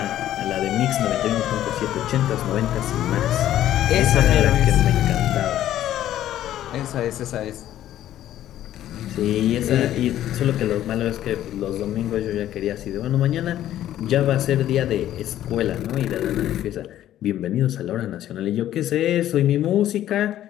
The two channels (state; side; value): quieter; right; 12.4 dB